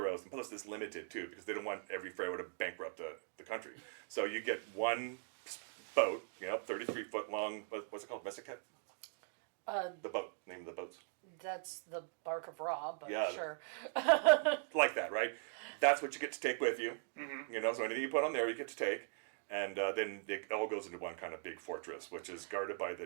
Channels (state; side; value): silent; left; digital silence